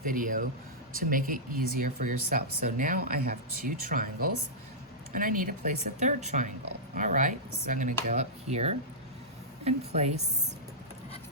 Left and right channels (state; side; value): normal; both; correlation -0.12